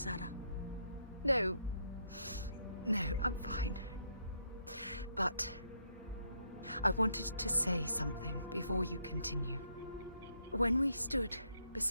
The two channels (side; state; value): both; inverted; correlation -0.74